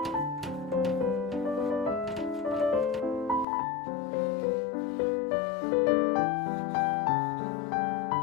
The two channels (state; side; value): drops out; right; at 3.5 s